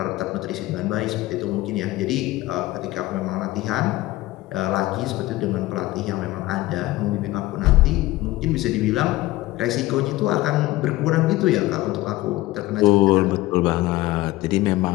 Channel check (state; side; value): quieter; right; 18.1 dB